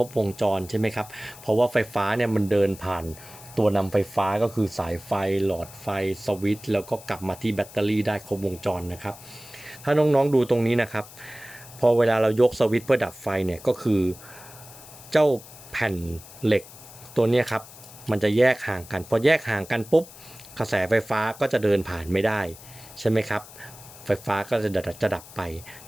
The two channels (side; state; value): left; noise; hiss, 18 dB below the sound